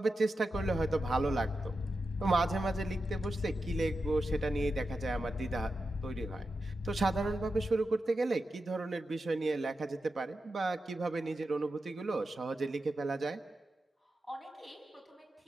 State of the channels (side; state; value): both; normal; correlation 0.90